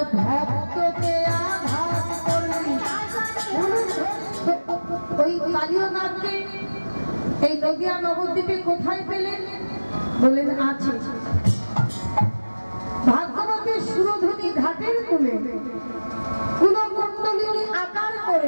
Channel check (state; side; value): inverted; both; correlation -1.00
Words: ভক্তকে আঘাত করলি ওই কালীয় নাথকে এই নদিয়া নবদ্বীপে কোথায় পেলেন বলেন আছে ভাগ্যবতী সুরধুনী ঘাটের কূলে কুলকুণ্ডলিনী আকার